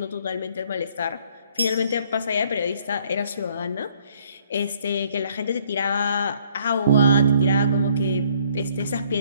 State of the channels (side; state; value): both; inverted; correlation -0.64